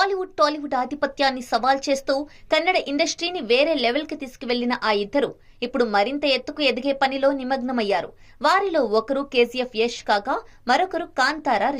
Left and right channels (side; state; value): both; identical; correlation 1.00